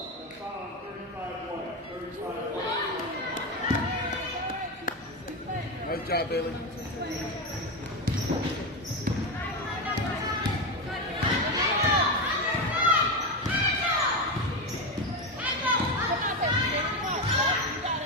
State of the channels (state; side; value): normal; both; correlation 0.15